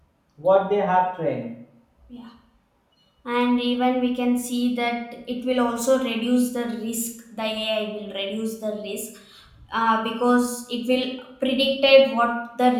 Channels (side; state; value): both; identical; correlation 1.00